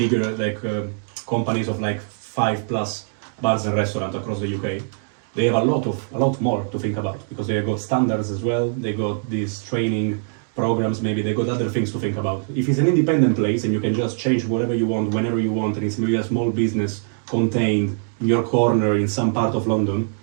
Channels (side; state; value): left; silent; digital silence